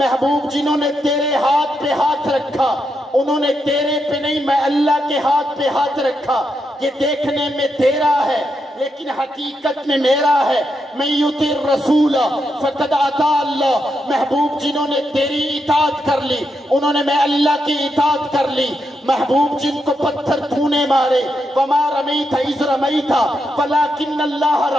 جنہوں نے تیرے ہاتھ پہ ہاتھ رکھا انہوں نے تیرے پہ نہیں، میں اللہ کے ہاتھ پہ ہاتھ رکھا۔ یہ دیکھنے میں تیرا ہے لیکن حقیقت میں میرا ہے۔ من یطع الرسول فقد اطاع اللہ۔ محبوب جنہوں نے تیری اطاعت کر لی انہوں نے میں اللہ کی اطاعت کر لی۔ محبوب جن کو پتھر تو نے مارے، وما رمیت اذ رمیت ولکن اللہ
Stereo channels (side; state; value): both; normal; correlation 0.83